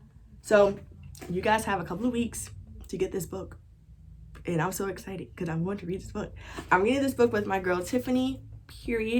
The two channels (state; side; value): identical; both; correlation 1.00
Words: So you guys have a couple of weeks to get this book, and I'm so excited because I'm going to read this book. I'm reading this book with my girl Tiffany.